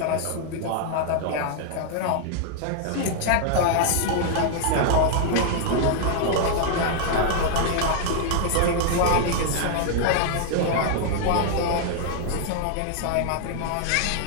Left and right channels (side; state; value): both; different; correlation 0.00